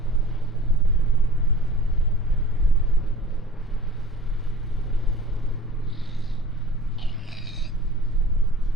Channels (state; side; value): normal; both; correlation 0.42